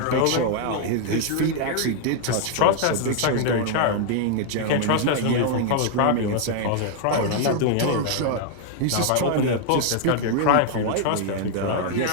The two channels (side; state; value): both; different; correlation 0.00